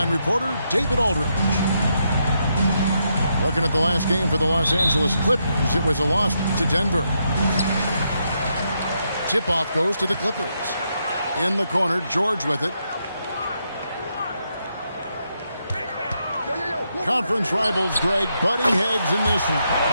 reporter, David Aldridge. Looking at the last game for the Los Angeles Clippers, it was a loss to Denver. Tip-off goes to the Clippers. In the corner, George with it. Conference rivals, Greg, butting heads in this one.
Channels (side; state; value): both; inverted; correlation -0.80